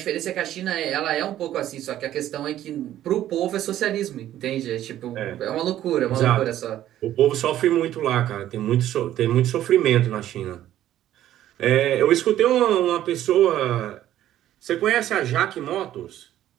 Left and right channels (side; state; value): left; quieter; 12.5 dB